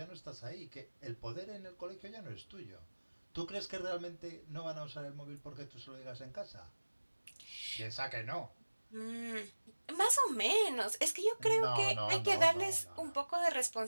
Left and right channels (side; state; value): both; inverted; correlation -1.00